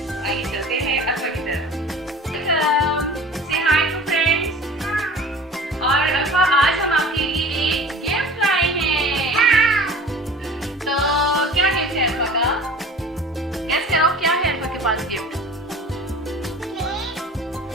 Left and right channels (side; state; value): both; normal; correlation 0.42